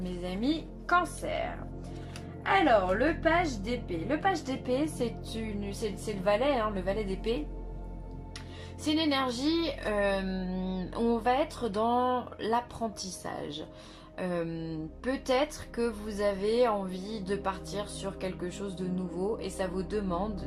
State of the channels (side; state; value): both; identical; correlation 1.00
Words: amis cancer. Alors, le page d'épée. Le page d'épée, c'est le valet, hein, le valet d'épée. C'est une énergie où on va être dans l'apprentissage. Peut-être que vous avez envie de partir sur quelque chose de nouveau et ça vous